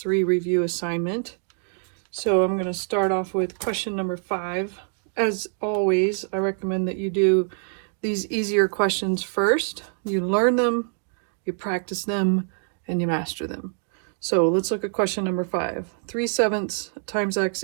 review assignment. So I'm going to start off with question number 5. As always, I recommend that you do these easier questions first. You learn them, you practice them, and you master them. So let's look at question number 5. 3/7 times x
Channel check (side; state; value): left; silent; digital silence